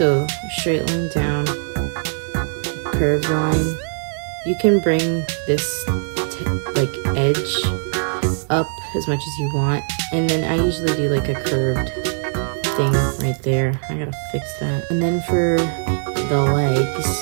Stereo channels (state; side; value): silent; left; digital silence